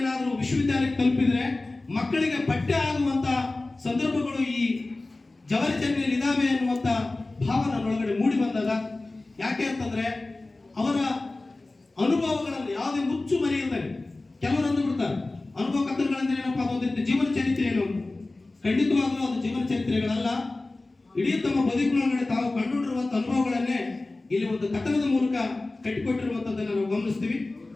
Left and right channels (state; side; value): quieter; right; 3.1 dB